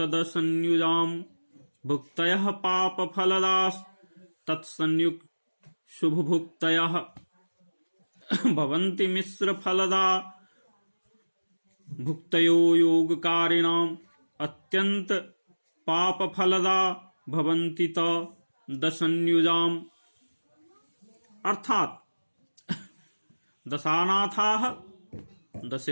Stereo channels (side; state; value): both; inverted; correlation -1.00